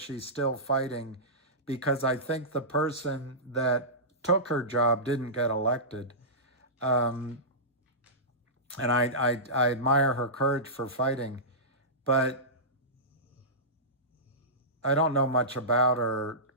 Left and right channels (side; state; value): both; normal; correlation -0.18